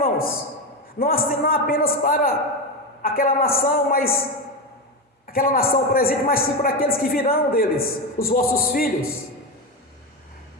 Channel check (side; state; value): both; normal; correlation 0.15